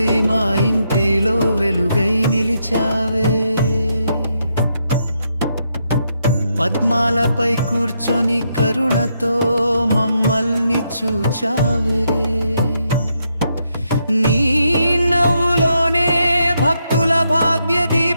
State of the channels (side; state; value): both; inverted; correlation -0.79